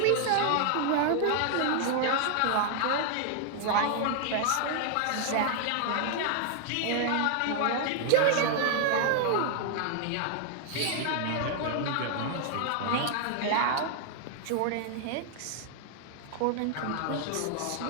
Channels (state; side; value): different; both; correlation 0.00